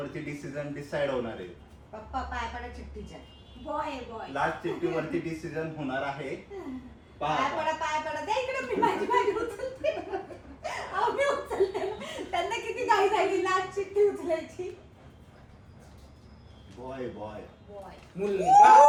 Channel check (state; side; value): identical; both; correlation 1.00